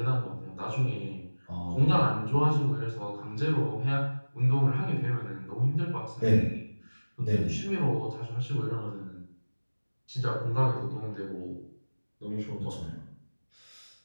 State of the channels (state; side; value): inverted; both; correlation -1.00